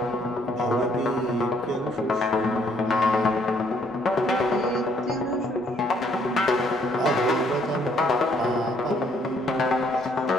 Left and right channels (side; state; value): both; normal; correlation 0.67